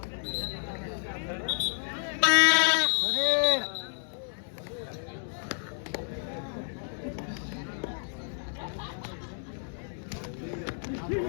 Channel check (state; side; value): silent; right; 57 dB below the other